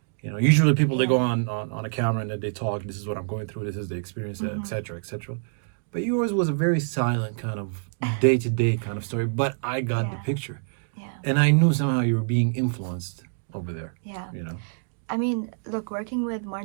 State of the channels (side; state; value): left; silent; digital silence